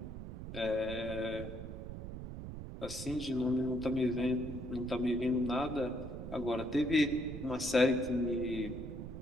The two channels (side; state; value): right; noise; rumble, 8 dB below the sound